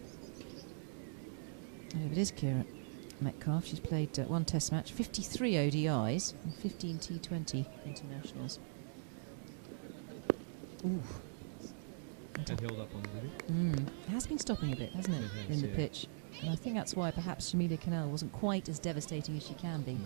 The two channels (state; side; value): silent; left; digital silence